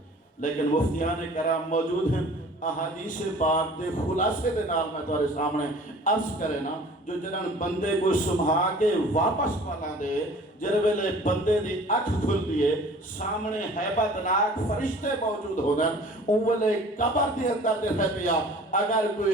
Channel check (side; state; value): both; normal; correlation 0.47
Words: لیکن مفتیان کرام موجود ہیں احادیث پاک دے خلاصے دے نال میں تمہارے سامنے عرض کرے نا جو جنہاں بندے کو سمجھا کے واپس پالا دے جرے ویلے بندے دی اکھ کھل دیے سامنے حیبت ناک فرشتے موجود ہو گئے اولے قبر دے اندر دے رہ پیا اگر